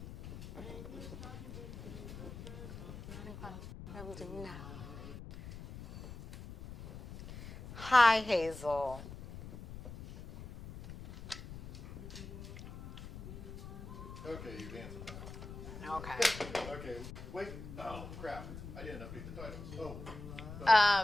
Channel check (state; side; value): noise; left; rumble, 11 dB below the sound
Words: Hi, Hazel. Okay, you're dancing now. Okay. Okay, wait. Oh, crap. I didn't update the titles.